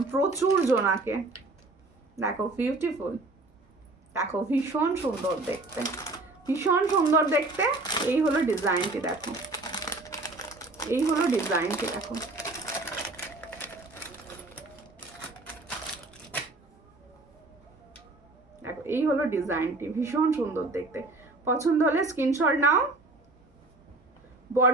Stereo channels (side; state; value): left; quieter; 3.1 dB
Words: প্রচুর জনাকে। দেখো বিউটিফুল, দেখো ভীষণ সুন্দর দেখতে, ভীষণ সুন্দর দেখতে। এই হলো ডিজাইনটি, দেখো এই হলো ডিজাইনটি, দেখো দেখো এই হলো ডিজাইনটি, ভীষণ সুন্দর দেখতে। পছন্দ হলে স্ক্রিনশট নাও।